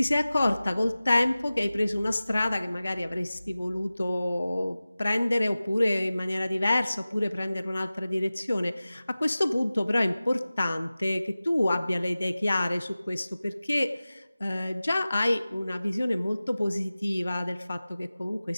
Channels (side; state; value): both; inverted; correlation -0.97